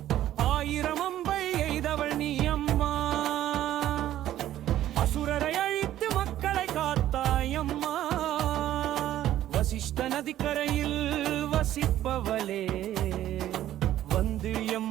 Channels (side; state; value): left; quieter; 12.8 dB